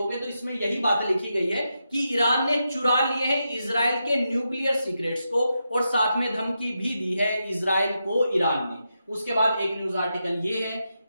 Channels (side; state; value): both; inverted; correlation -0.86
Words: तो इसमें यही बात लिखी गई है कि ईरान ने चुरा लिए हैं इजराइल के न्यूक्लियर सीक्रेट्स को और साथ में धमकी भी दी है इजराइल को ईरान ने। उसके बाद एक न्यूज आर्टिकल ये है,